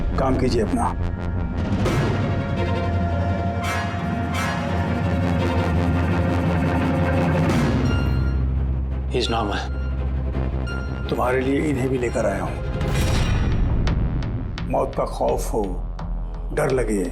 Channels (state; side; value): identical; both; correlation 1.00